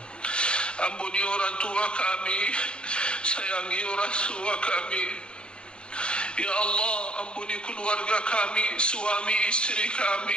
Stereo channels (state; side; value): late; right; 0.054 ms